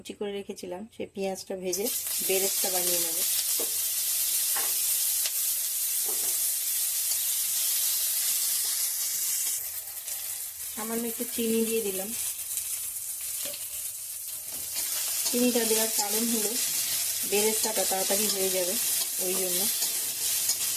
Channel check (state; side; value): identical; both; correlation 1.00